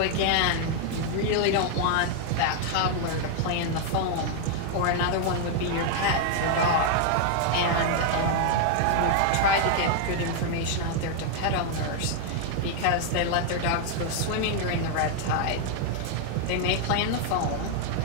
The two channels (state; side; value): different; both; correlation 0.00